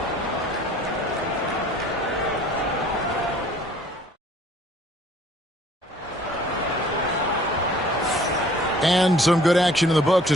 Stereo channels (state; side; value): normal; both; correlation 0.54